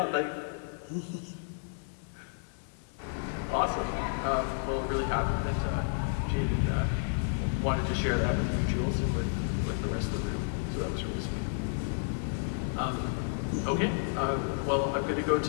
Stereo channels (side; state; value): right; silent; 57 dB below the other